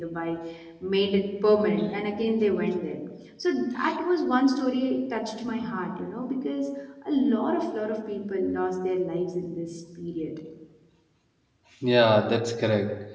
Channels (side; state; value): both; identical; correlation 1.00